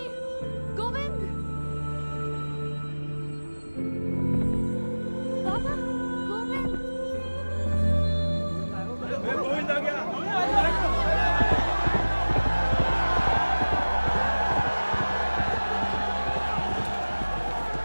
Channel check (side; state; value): both; inverted; correlation -1.00